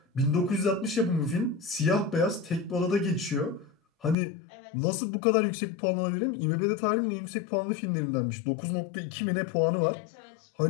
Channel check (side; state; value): right; drops out; at 4.2 s